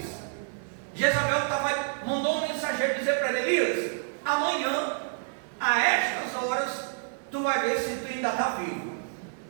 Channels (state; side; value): silent; left; digital silence